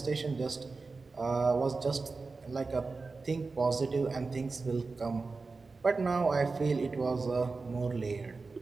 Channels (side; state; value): left; quieter; 4.0 dB